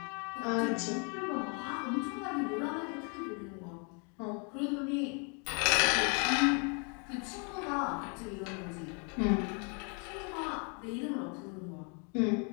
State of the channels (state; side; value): quieter; right; 36.6 dB